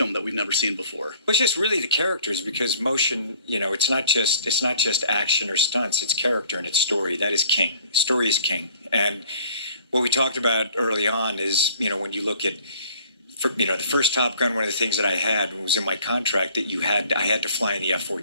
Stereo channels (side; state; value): both; inverted; correlation -0.54